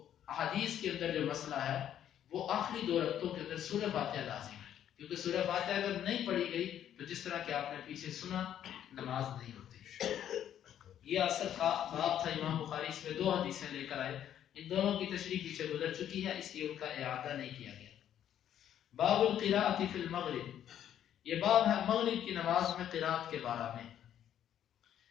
احادیث کے اندر جو مسئلہ ہے وہ آخری دو رکعتوں کے اندر سورہ فاتحہ لازم ہے، کیونکہ سورہ فاتحہ اگر نہیں پڑھی گئی تو جس طرح کہ آپ نے پیچھے سنا، نماز نہیں ہوتی. یہ اصل کا باب تھا. امام بخاری اس میں دو حدیثیں لے کر آئے، ان دونوں کی تشریح پیچھے گزر چکی ہے، اس لیے ان کا اعادہ نہیں کیا گیا. باب القراءۃ فی المغرب، یہ باب ہے مغرب کی نماز میں قراءت کے بارے میں.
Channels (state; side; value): quieter; right; 10.4 dB